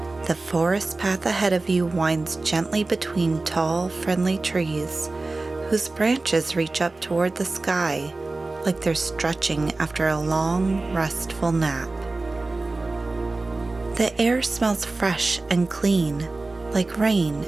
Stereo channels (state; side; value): quieter; left; 3.3 dB